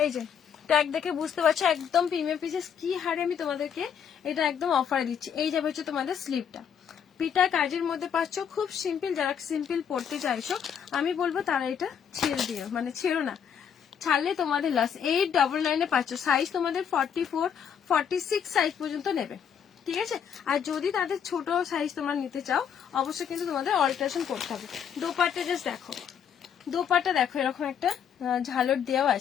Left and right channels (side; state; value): right; quieter; 8.0 dB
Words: যে ট্যাগ দেখে বুঝতে পারছো একদম প্রিমিয়াম পিসেস। কি হারে আমি তোমাদেরকে এটা একদম অফারে দিচ্ছি। এই যাবে হচ্ছে তোমাদের স্লিপটা, পিটা কাজের মধ্যে পাচ্ছ, খুব সিম্পল। যারা সিম্পল পড়তে চাইছো আমি বলবো তারা এটা ছেড়ে দিও, মানে ছেড়ো না, ছাড়লে তোমাদের লস। 899 পাচ্ছ, সাইজ তোমাদের 44, 46 সাইজ পর্যন্ত নেবে, ঠিক আছে। আর যদি তাদের ছোট সাইজ তোমরা নিতে চাও, অবশ্যই কিন্তু তোমাদের অল্টারেশন করতে হবে। দোপাট্টা জাস্ট দেখো, দোপাট্টা দেখো এরকম একটা ঝালর দেওয়া